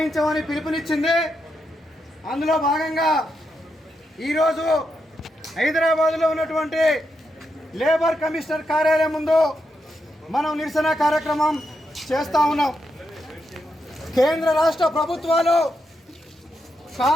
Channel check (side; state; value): both; normal; correlation 0.83